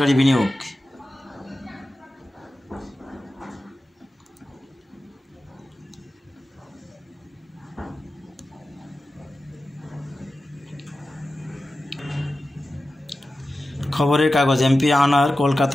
বিনিয়োগ। খবরের কাগজ, এমপি আনার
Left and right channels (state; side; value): normal; both; correlation 0.94